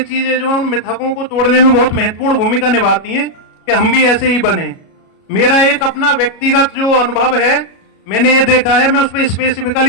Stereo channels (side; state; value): right; late; 37 ms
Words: चीजें जो है उन मिथकों को तोड़ने में बहुत महत्वपूर्ण भूमिका निभाती हैं कि हम भी ऐसे ही बने। मेरा एक अपना व्यक्तिगत जो अनुभव है, मैंने ये देखा है, मैं उसमें